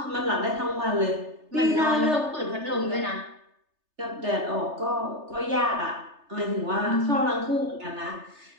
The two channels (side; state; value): left; late; 3.3 ms